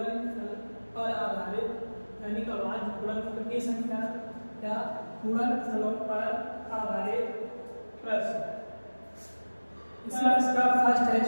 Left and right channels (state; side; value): inverted; both; correlation -1.00